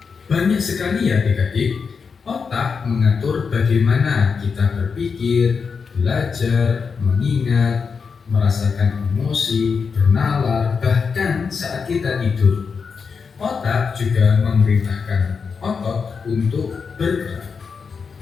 Banyak sekali ya adik-adik. Otak mengatur bagaimana kita berpikir, belajar, mengingat, merasakan emosi, bernalar, bahkan saat kita tidur. Otak juga memerintahkan otot untuk bergerak.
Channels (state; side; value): quieter; right; 5.6 dB